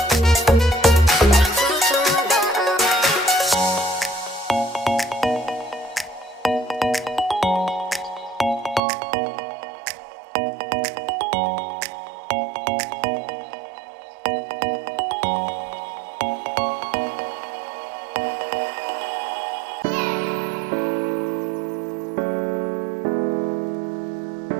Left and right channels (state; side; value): drops out; left; at 8.8 s